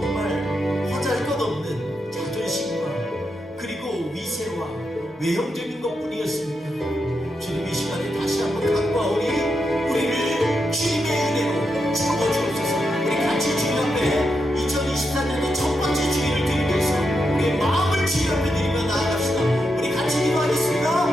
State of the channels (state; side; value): normal; both; correlation 0.85